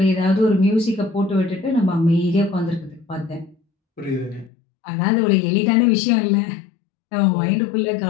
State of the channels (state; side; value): drops out; right; at 4.5 s